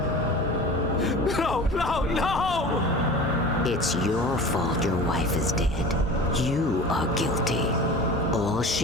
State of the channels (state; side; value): normal; both; correlation 0.37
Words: No, no, no! It's your fault your wife is dead. You are guilty. All